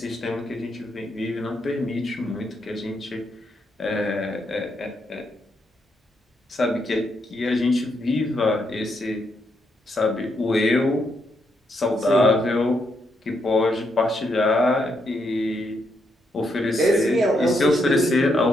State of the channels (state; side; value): normal; both; correlation 0.78